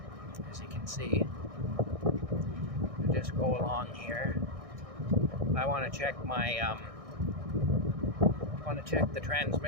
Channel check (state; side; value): late; left; 1.6 ms